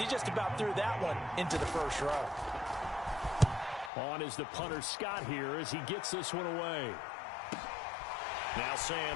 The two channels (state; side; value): drops out; right; at 3.9 s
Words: just about threw that one into the first row. On is the punter Scott here as he gets this one away. Now